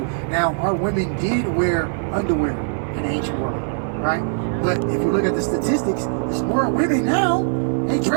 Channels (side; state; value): left; silent; digital silence